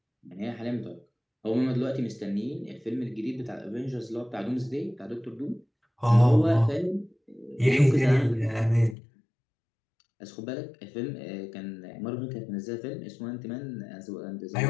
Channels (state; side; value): drops out; right; at 9.0 s